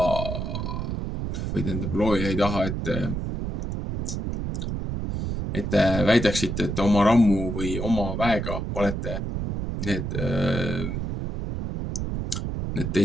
või tähendab, looja ei taha, et te väidaksite, et oma rammu või oma väega olete need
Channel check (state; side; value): noise; right; rumble, 3 dB below the sound